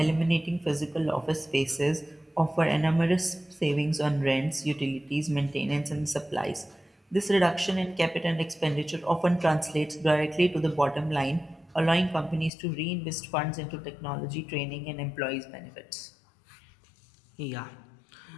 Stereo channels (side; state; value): right; drops out; at 12.5 s